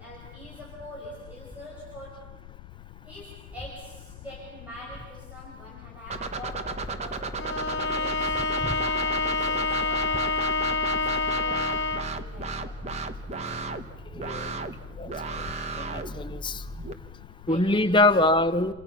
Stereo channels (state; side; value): noise; left; rumble, 17 dB below the sound